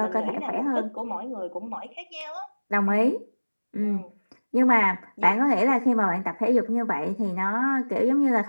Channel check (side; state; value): both; inverted; correlation -1.00